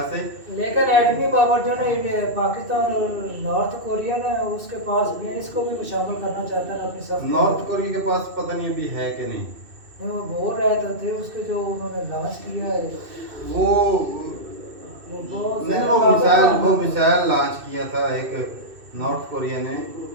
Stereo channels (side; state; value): left; late; 2.7 ms